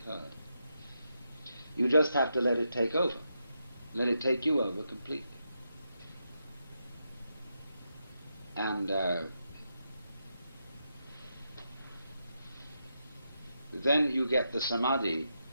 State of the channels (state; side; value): inverted; both; correlation -0.84